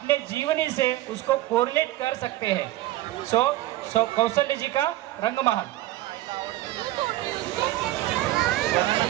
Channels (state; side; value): quieter; left; 16.0 dB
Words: जीवनी से उसको कोरिलेट कर सकते हैं। सो कौशल्य जी का रंगमहल।